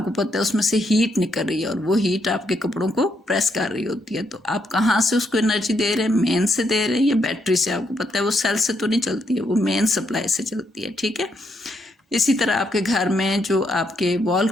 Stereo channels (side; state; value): both; normal; correlation 0.77